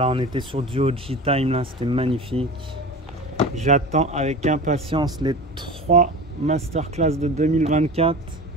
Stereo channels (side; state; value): both; normal; correlation 0.33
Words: on était sur du OG Time là, c'était magnifique. J'attends avec impatience les 3 masterclass de 2024